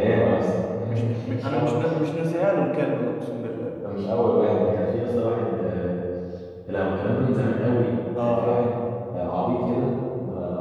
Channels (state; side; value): identical; both; correlation 1.00